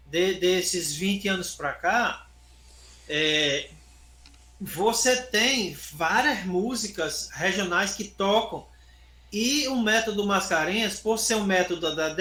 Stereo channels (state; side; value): identical; both; correlation 1.00